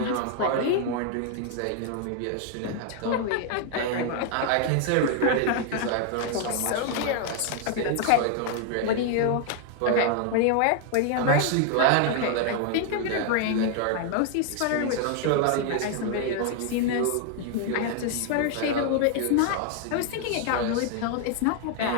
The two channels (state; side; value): different; both; correlation 0.00